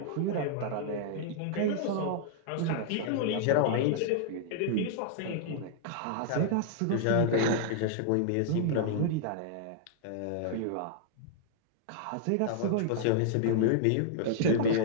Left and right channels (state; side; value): different; both; correlation -0.01